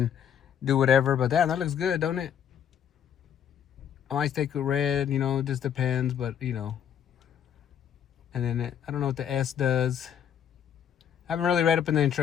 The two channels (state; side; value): quieter; right; 8.9 dB